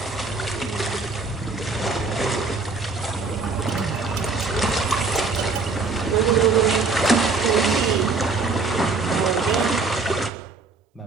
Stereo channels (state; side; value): quieter; left; 4.0 dB